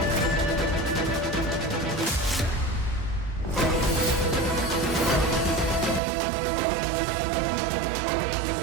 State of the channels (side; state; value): left; drops out; at 6.0 s